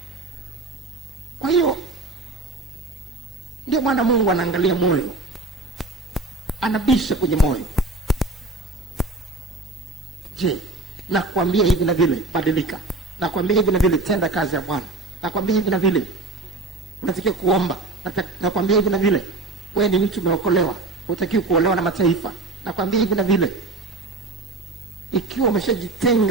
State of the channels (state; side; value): quieter; left; 3.2 dB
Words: Kwa hiyo ndio maana Mungu anaangalia moyo, anabisha kwenye moyo. Je, nakwambia hivi na vile, badilika. Nakwambia hivi na vile, tenda kazi ya Bwana. Nakwambia hivi na vile, unatakiwa kuomba. Nakwambia hivi na vile, wewe ni mtu umeokolewa, hutakiwi kuolewa na mataifa. Nakwambia hivi na vile. Ikiwa